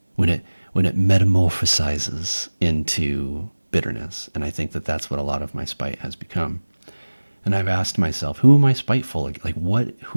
when it metamorphosizes into bitterness. And I think that that's what a lot of my spite has become. And I've asked myself, who am I spiteful? Like what?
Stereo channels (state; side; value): inverted; both; correlation -1.00